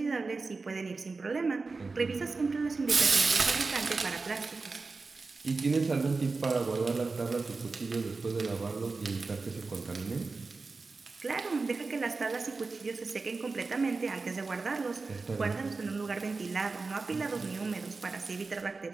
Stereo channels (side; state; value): left; quieter; 4.0 dB